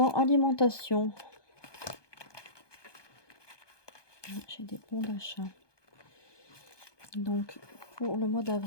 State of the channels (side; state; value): right; late; 1.2 ms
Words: alimentation, j'ai des bons d'achat. Donc pour le mois